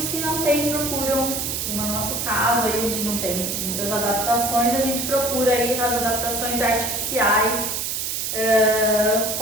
que não têm procuram, no nosso caso, aí a gente não tem muitas adaptações, a gente procura aí as adaptações artificiais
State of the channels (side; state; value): right; noise; hiss, 2 dB below the sound